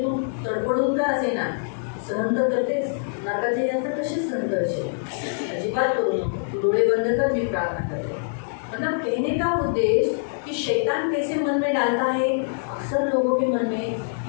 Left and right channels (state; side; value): silent; right; digital silence